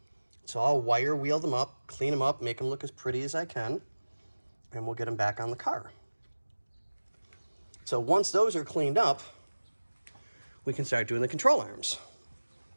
So I'll wire wheel them up, clean them up, make them look as pretty as I can, and we'll get them back on the car. So once those are cleaned up, we can start doing the control arms.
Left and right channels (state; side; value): inverted; both; correlation -1.00